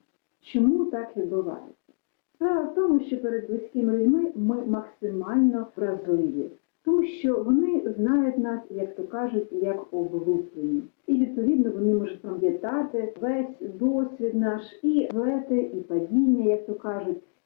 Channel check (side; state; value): right; silent; digital silence